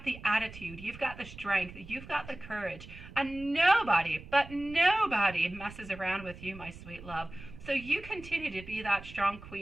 the attitude. You've got the strength. You've got the courage. And nobody, but nobody messes around with you, my sweet love. So you continue to be that strong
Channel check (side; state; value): right; noise; rumble, 16 dB below the sound